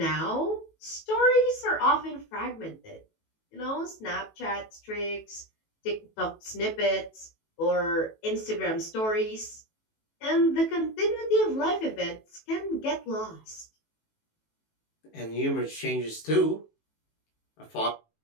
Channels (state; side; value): late; right; 18 ms